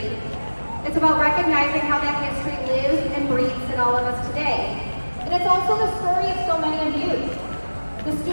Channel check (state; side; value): inverted; both; correlation -1.00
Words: It's about recognizing how that history lives and breathes in all of us today. And it's also the story of so many of you, the